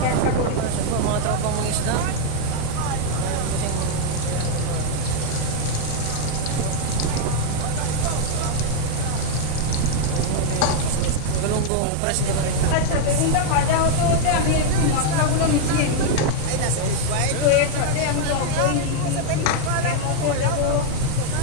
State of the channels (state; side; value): different; both; correlation 0.00